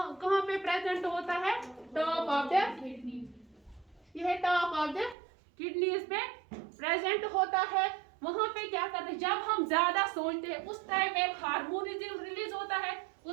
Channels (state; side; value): drops out; left; at 5.2 s